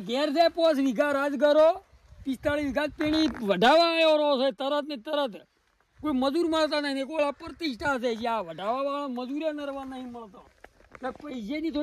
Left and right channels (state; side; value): identical; both; correlation 1.00